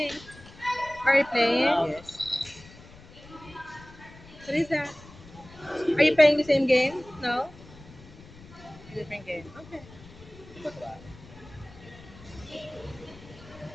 Are you playing? Yes. What is that? Are you playing the same game? No? A different game. Okay.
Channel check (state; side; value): noise; left; rumble, 20 dB below the sound